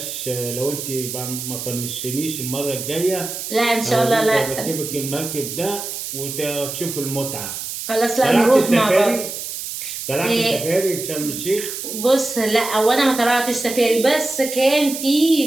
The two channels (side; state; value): right; noise; hiss, 7 dB below the sound